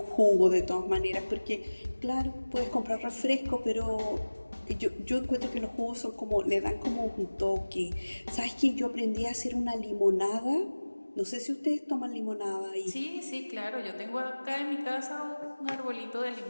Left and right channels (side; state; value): both; inverted; correlation -1.00